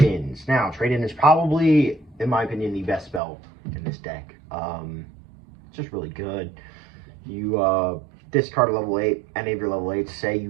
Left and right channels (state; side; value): drops out; left; at 3.2 s